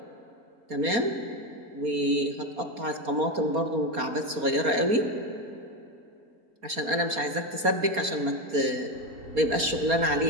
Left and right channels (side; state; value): left; late; 4.3 ms